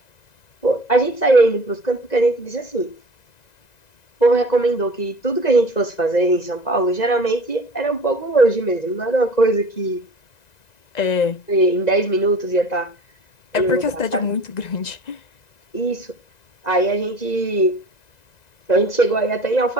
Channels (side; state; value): right; late; 1.9 ms